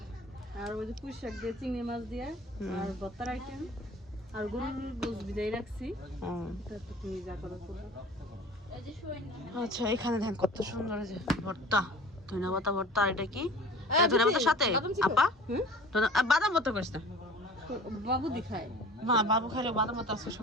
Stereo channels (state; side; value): normal; both; correlation 0.43